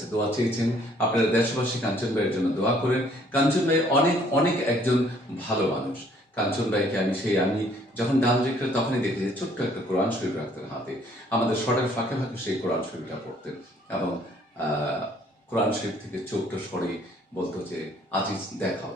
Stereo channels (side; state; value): both; normal; correlation 0.61